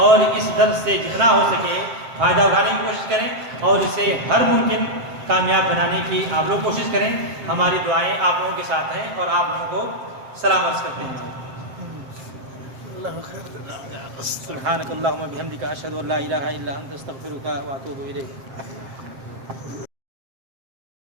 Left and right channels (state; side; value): late; left; 7.6 ms